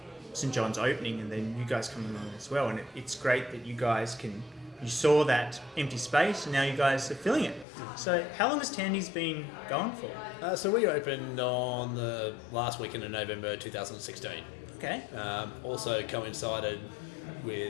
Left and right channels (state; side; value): drops out; right; at 7.7 s